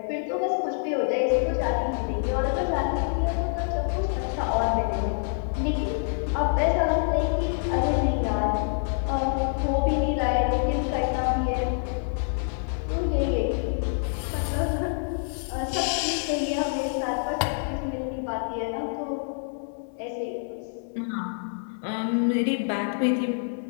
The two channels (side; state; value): right; silent; digital silence